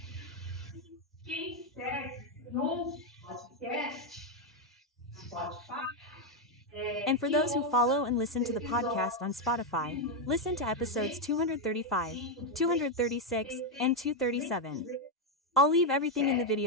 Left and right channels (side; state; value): both; normal; correlation 0.03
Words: And for those who follow and listen to the podcast on Spotify, listen to episodes 235, 236, and 237. I'll leave everything in the